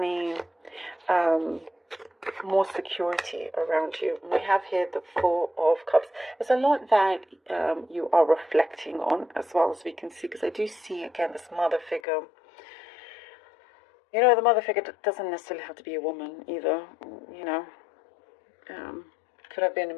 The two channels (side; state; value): right; drops out; at 12.0 s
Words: more security around you. We have here the Four of Cups. There's a lot that you are reflecting on, as well as we can see, because I do see again this mother figure. The mother figure doesn't necessarily have to be a woman either. Could have been a